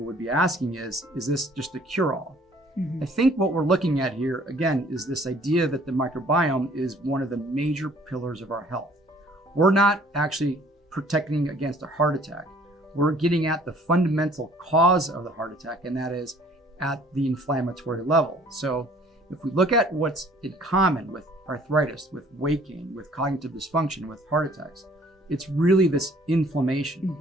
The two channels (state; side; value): normal; both; correlation 0.57